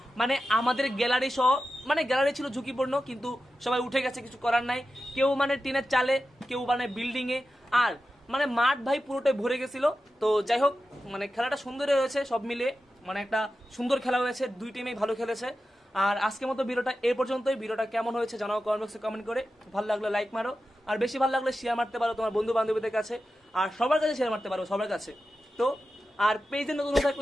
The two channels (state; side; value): normal; both; correlation 0.92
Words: মানে আমাদের গ্যালারি সহ, মানে গ্যালারি ছিল ঝুঁকিপূর্ণ, কিন্তু সবাই উঠে গেছে, কিছু করার নাই। কেউ মানে টিনের চালে, কেউ মানে বিল্ডিং এ, আর মানে মাঠ ভাই পুরোটাই ভরে গেছিল। তো যাই হোক, মানে খেলাটা সুন্দর হয়েছে, সব মিলে মানে একটা সুন্দর খেলা হয়েছে, 2 টিমেই ভালো খেলেছে। আর আজকের মতো ভিডিওটা এই পর্যন্তই। ভিডিওটা কেমন হয়েছে জানাও কমেন্ট বক্সে কমেন্ট করে। ভালো লাগলে লাইক মারো, আর বেশি ভালো লাগলে শেয়ার মারতে পারো তোমার বন্ধু বান্ধবীদের কাছে, আর সবার কাছে শেয়ার মারতে পারো, সবার কাছে। তো আর পেজে নতুন